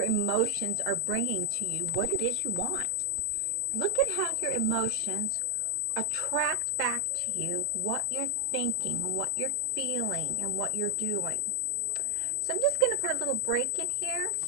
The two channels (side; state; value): left; late; 1.1 ms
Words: emotions are bringing to you what it is you want. Look at how your emotions attract back to you what you're thinking and what you're feeling and what you're doing. So I'm just going to put a little break in here.